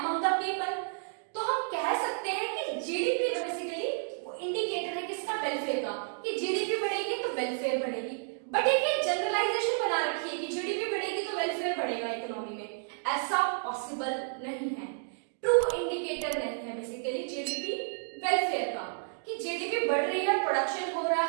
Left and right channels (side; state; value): left; silent; digital silence